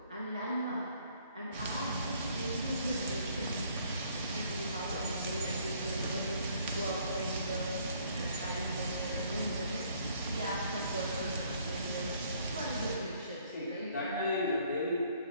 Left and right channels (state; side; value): inverted; both; correlation -0.63